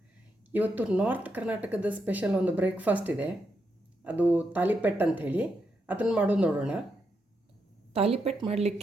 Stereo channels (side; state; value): both; normal; correlation 0.82